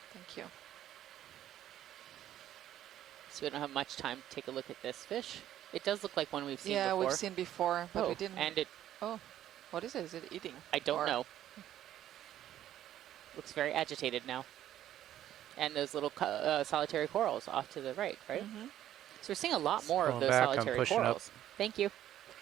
Thank you. So we don't have much time to take a look at this fish. It does look like one we've seen Yeah, before. we've seen before, but we didn't. And it, Oh, what is it? Is it eating? I don't Or- know. Looks very agitated now. And those little solitary corals off to the right, right? Mm-hmm. So we're seeing a lot more of Scrolling those back, I'm solitary pushing up. corals. Thank you.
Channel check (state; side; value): quieter; left; 12.0 dB